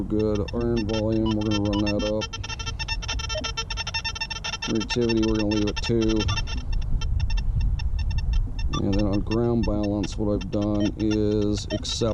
good. Iron volume, we're going to run that up. Reactivity, we're going to leave it 2. And then on ground balance, what I've done is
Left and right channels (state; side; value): identical; both; correlation 1.00